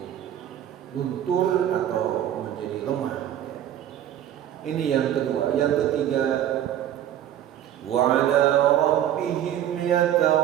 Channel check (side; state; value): left; quieter; 11.3 dB